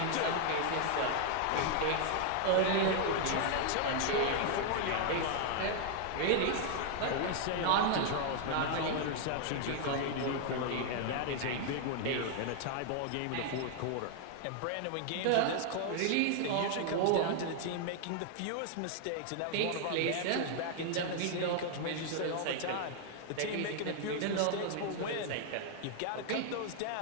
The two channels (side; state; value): both; different; correlation 0.00